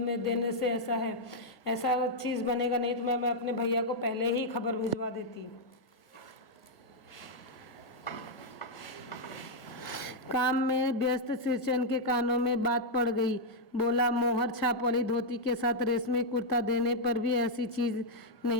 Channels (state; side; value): late; right; 1.6 ms